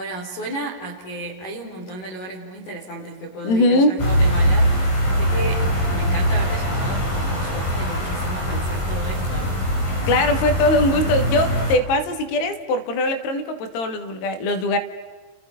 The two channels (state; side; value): late; right; 22 ms